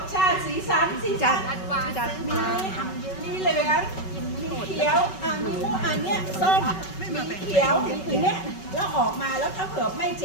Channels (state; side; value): late; right; 5.3 ms